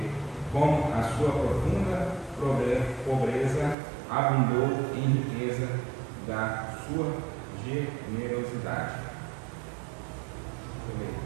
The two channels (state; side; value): drops out; left; at 3.8 s